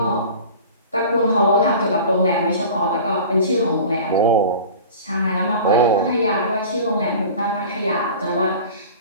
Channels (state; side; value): inverted; both; correlation -0.39